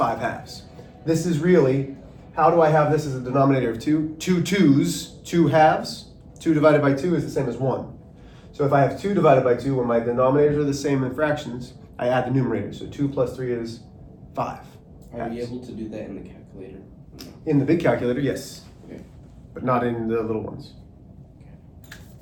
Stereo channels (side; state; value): both; identical; correlation 1.00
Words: This is really, how do I have this as a denominator of 2? 2 2's, 2/2. 2 divided by 2 is the same as 1. So if I have 2 divided by 2, when my denominators are the same in fractions, I add the numerator. So 2 plus 3 is 5. Are we able to do that in the calculator? In the big calculator, yes. Okay. but not in the little ones.